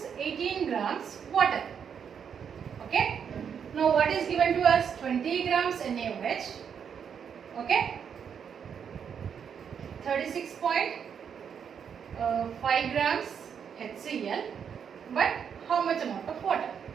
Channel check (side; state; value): left; quieter; 7.5 dB